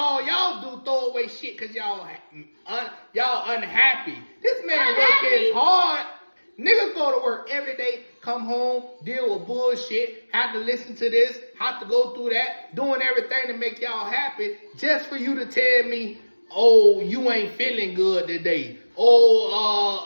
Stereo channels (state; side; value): inverted; both; correlation -1.00